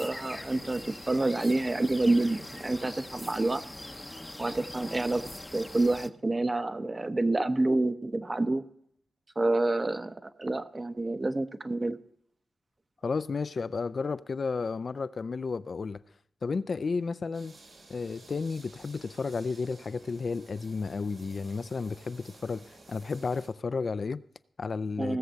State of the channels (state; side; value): normal; both; correlation 0.95